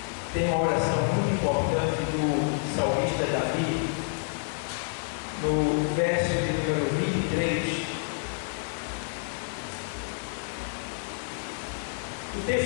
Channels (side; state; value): right; silent; digital silence